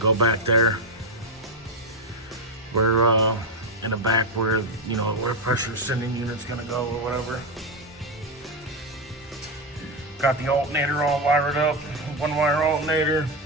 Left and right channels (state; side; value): normal; both; correlation 0.08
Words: back there. Where in the back where, you know, where pressure sending unit's gonna go or whatever. Got the alternator all wired up, 1-wire alternator.